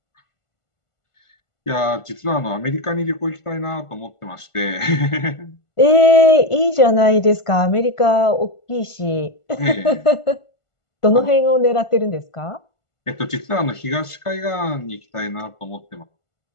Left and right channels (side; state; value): right; late; 1.5 ms